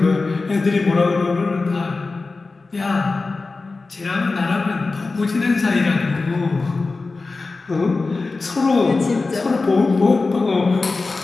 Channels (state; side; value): quieter; right; 3.8 dB